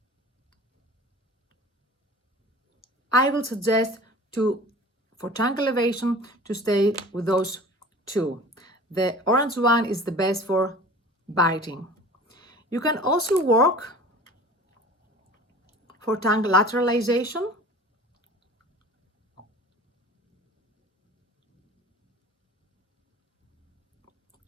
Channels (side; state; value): both; normal; correlation 0.41